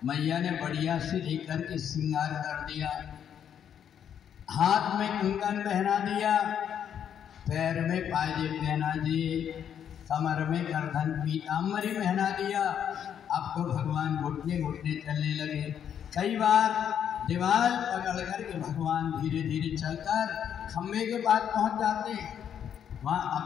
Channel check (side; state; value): right; quieter; 8.8 dB